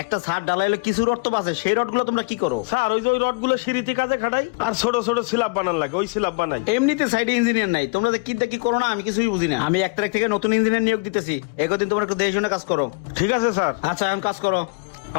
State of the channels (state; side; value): quieter; right; 31.1 dB